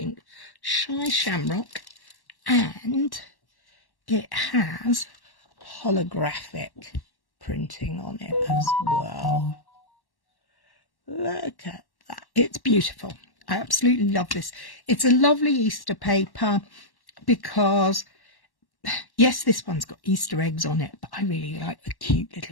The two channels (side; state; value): right; late; 1.1 ms